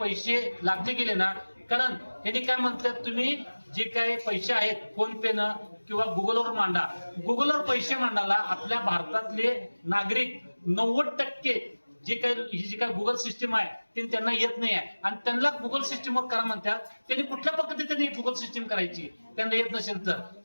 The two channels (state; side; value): inverted; both; correlation -1.00